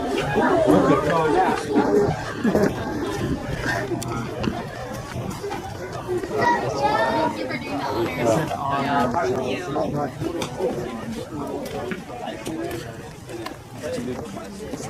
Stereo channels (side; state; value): both; identical; correlation 1.00